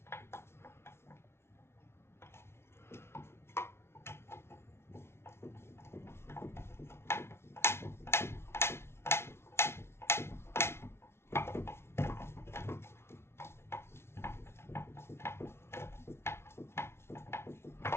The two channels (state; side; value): late; right; 0.12 ms